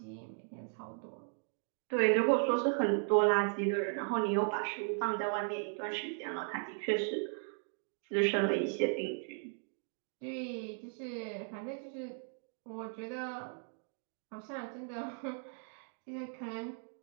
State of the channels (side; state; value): left; silent; 53 dB below the other